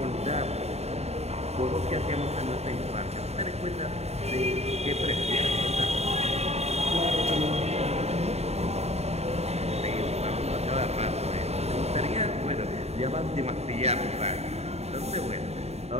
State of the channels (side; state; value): left; late; 0.31 ms